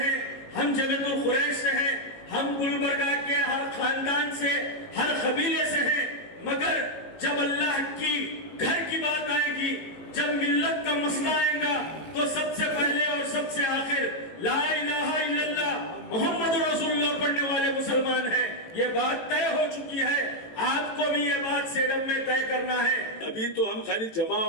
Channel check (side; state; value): right; late; 18 ms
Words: ہیں، ہم جمعیت القریش سے ہیں، ہم گلبرگہ کے ہر خاندان سے، ہر قبیلے سے ہیں، مگر جب اللہ کی گھر کی بات آئے گی، جب ملت کا مسئلہ آئے گا تو سب سے پہلے اور سب سے آخر لا الہ الا اللہ محمد رسول اللہ پڑھنے والے مسلمان ہیں۔ یہ بات طے ہو چکی ہے، آپ کو بھی یہ بات سیڈم میں طے کرنا ہے۔ ابھی تو ہم خالی جمع